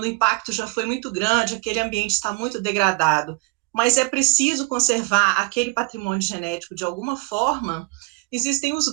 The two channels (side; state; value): left; quieter; 27.4 dB